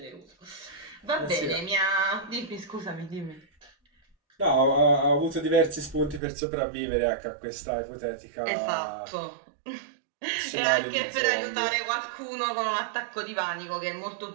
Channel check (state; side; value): drops out; left; at 6.2 s